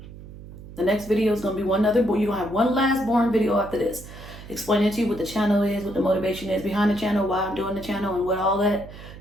The next video is going to be one other, but you're going to have one last boring video after this. Explaining to you what the channel is, what the motivation is behind the channel, why I'm doing the channel, and what all that.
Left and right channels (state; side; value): noise; right; hum, 15 dB below the sound